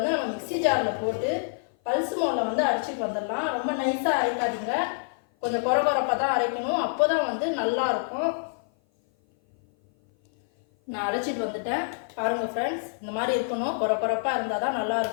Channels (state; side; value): silent; right; 56 dB below the other